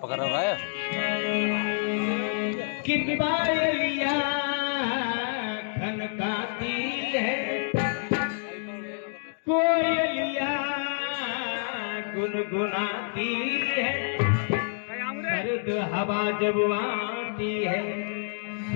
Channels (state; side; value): silent; right; digital silence